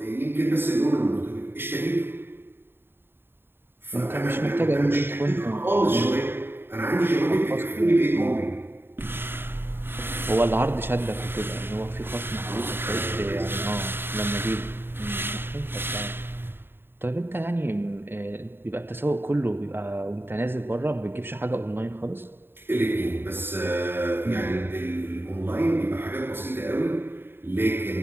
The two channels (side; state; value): left; late; 0.10 ms